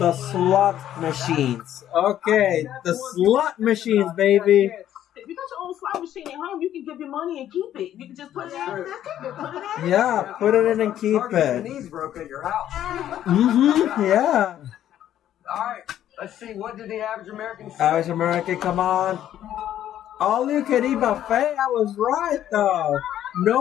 slot machines. Okay, the slot machines, baby. If you got your own slot machine at home, you can give your money and keep it. You can just put it in and just keep it. Put it in. Yeah, put it in and keep Hard to get it. the knees broke at your house. Mm-hmm, yeah. All right, let's see. What did the average American say? Average American, come on. All you can eat buffet, I was right though.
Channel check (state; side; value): quieter; right; 11.5 dB